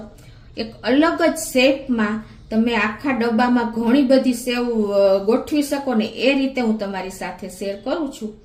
એક અલગ જ શેપમાં તમે આખા ડબ્બામાં ઘણી બધી સેવ ગોઠવી શકો ને એ રીતે હું તમારી સાથે શેર કરું છું।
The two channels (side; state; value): both; identical; correlation 1.00